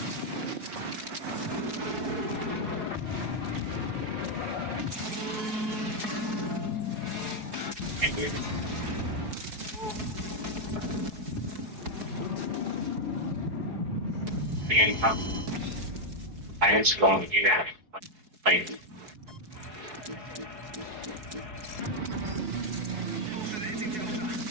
I was going to do that. Like,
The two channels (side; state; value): left; late; 4.7 ms